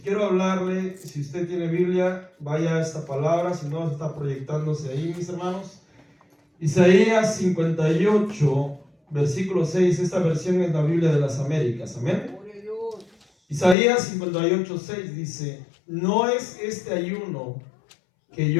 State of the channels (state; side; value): drops out; right; at 13.8 s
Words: hablarle, si usted tiene Biblia, vaya a esta palabra, si no está proyectándose ahí, mis hermanos. Isaías 58, versículo 6, esta versión es la Biblia de las Américas. Amén. Isaías 58, 6 dice: ¿no es este ayuno que